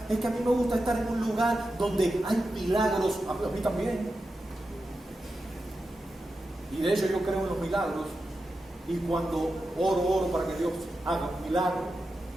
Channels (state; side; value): normal; both; correlation 0.90